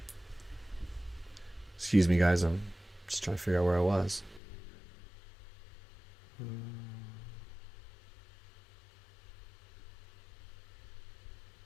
Excuse me, guys. I'm just trying to figure out where I was.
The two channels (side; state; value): right; drops out; at 4.4 s